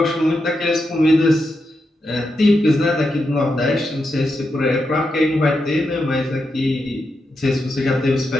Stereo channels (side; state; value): both; normal; correlation 0.86